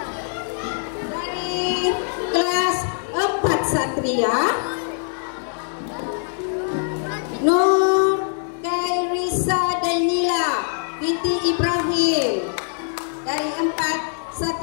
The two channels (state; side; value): silent; right; 60 dB below the other